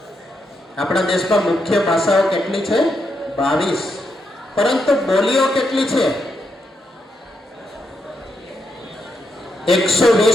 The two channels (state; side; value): normal; both; correlation 0.81